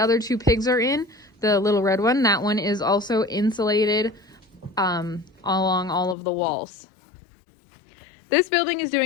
two pigs are in, the little red one, that one is also insulated along all of the walls. This building is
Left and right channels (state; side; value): drops out; right; at 6.2 s